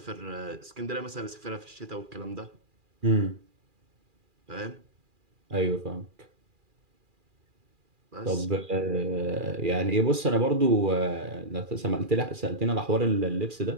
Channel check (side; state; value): left; late; 2.4 ms